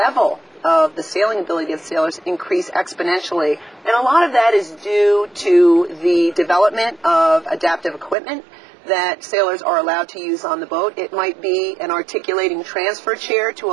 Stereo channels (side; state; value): left; drops out; at 8.2 s